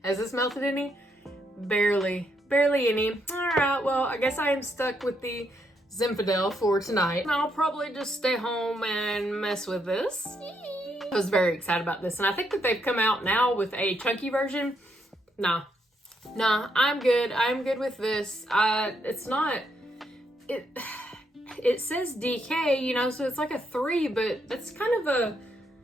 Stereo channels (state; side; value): normal; both; correlation 0.77